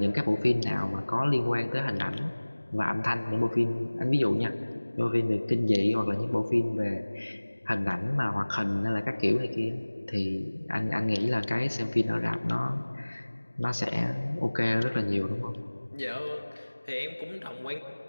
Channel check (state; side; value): inverted; both; correlation -1.00